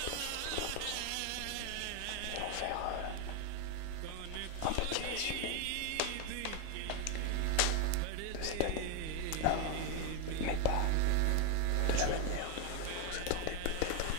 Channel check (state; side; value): different; both; correlation 0.01